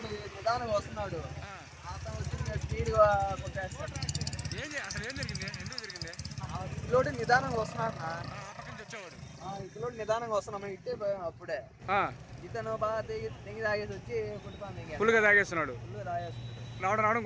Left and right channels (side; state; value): both; identical; correlation 1.00